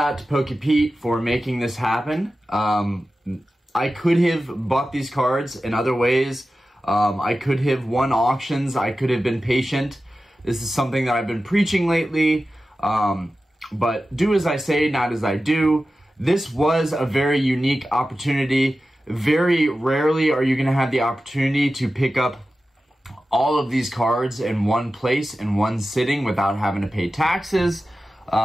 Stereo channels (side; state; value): both; normal; correlation 0.94